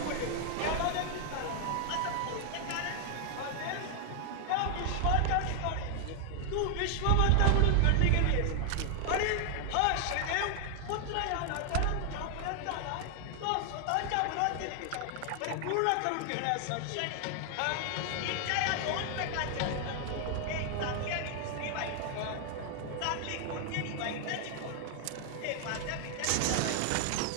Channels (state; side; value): different; both; correlation 0.00